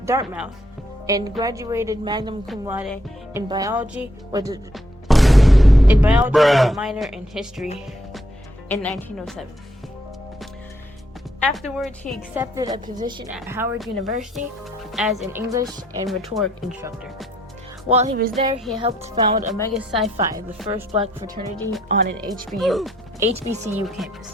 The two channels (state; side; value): normal; both; correlation 0.71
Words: and graduated magna cum laude in biology with a minor in history in 1907. Afterwards, he accepted a position at Howard University as an English and rhetoric instructor. While he was there, he helped found Omega Psi Phi, the first Black fraternity on an HBCU